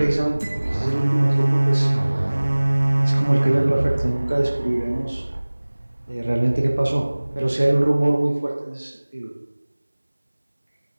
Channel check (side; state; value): both; inverted; correlation -1.00